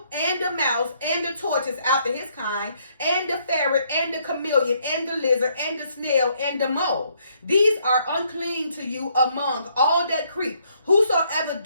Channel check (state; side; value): inverted; both; correlation -0.70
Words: and the mouse, and the tortoise after his kind, and the ferret, and the chameleon, and the lizard, and the snail, and the mole. These are unclean to you among all that creep. Whosoever